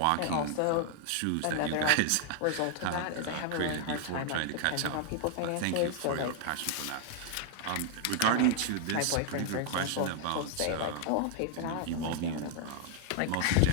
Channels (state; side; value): different; both; correlation 0.00